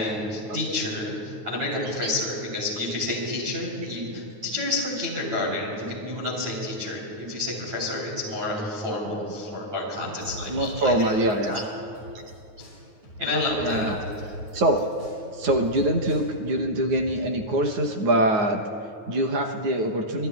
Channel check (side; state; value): left; late; 9.4 ms